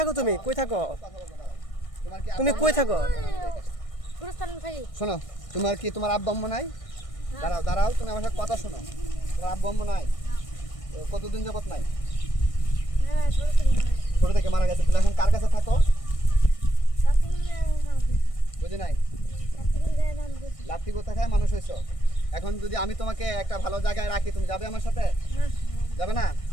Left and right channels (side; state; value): right; late; 1.6 ms